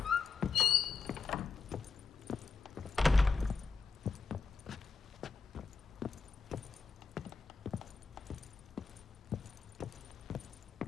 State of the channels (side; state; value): right; quieter; 4.8 dB